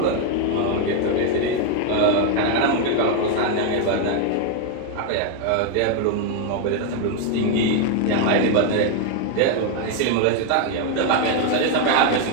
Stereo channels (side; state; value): both; different; correlation 0.01